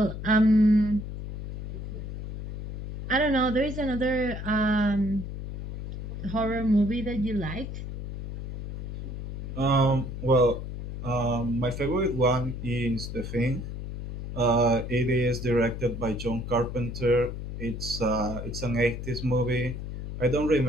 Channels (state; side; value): noise; left; hum, 7 dB below the sound